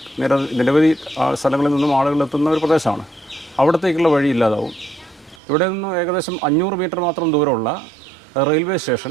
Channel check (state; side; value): drops out; left; at 5.4 s